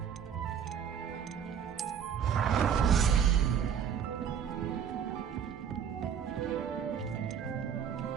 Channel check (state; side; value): quieter; left; 8.0 dB